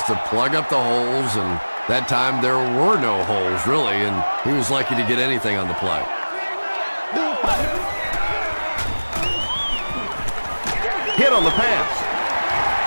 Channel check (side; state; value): both; inverted; correlation -1.00